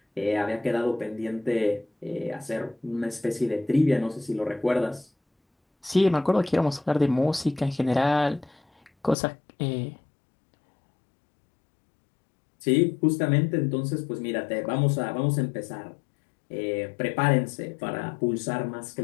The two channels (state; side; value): drops out; right; at 9.2 s